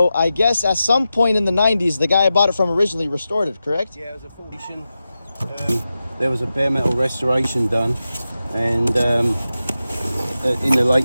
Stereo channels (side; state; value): both; inverted; correlation -0.92